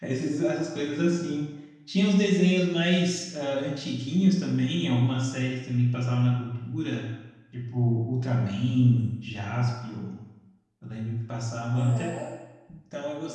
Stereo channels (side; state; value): both; identical; correlation 1.00